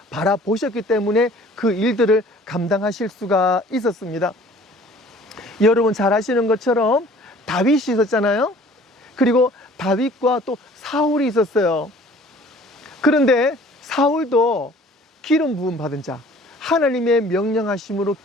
바라보셨기 때문에 그 일들을 감당하실 수가 있었습니다. 여러분 잘 아시는 것처럼 다윗이 있었잖아요. 그리고 다윗과 또 사울이 있었어요. 그런데 사울도 기름 부음 받은 자, 하나님의 명령하심으로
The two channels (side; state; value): both; normal; correlation 0.51